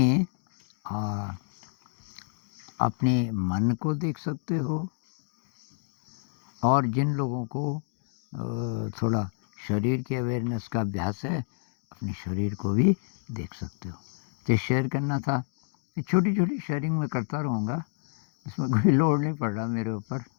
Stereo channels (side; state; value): right; silent; digital silence